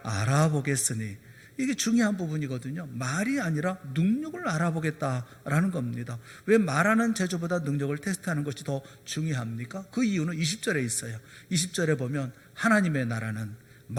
알아보겠으니 이게 중요한 부분이거든요. 말이 아니라 능력을 알아보겠다라는 겁니다. 왜 말하는 제조보다 능력을 테스트하는 것이 더 중요합니까? 그 이유는 20절에 있어요. 20절에 보면 하나님의 나라는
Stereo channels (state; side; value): identical; both; correlation 1.00